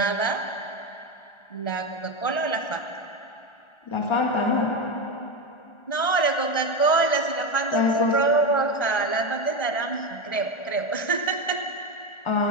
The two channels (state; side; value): late; right; 1.4 ms